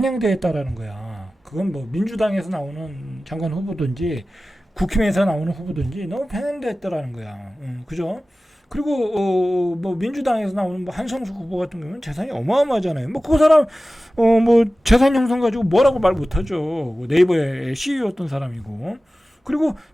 있다라는 거야. 그건 뭐 민주당에서 나오는 장관 후보든지 국힘에서 나오는 후보든지 너무 편향되어 있다라는 거야. 그죠? 그리고 뭐 민주당에서 나오는 뭐 한성수 후보 같은 경우는 재산이 어마어마하잖아요. 뭐 그 사람 뭐 재산 형성 가지고 뭐라고 말 못하죠. 뭐 네이버의 CEO였던 사람이고. 그리고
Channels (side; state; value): both; normal; correlation 0.96